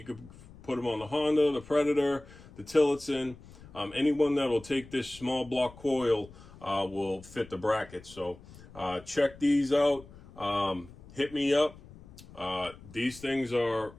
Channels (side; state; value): left; noise; rumble, 20 dB below the sound